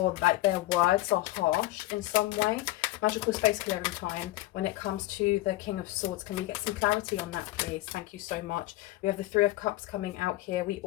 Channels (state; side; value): quieter; right; 17.3 dB